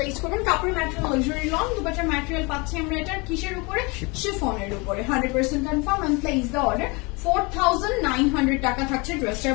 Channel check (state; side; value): quieter; right; 28.1 dB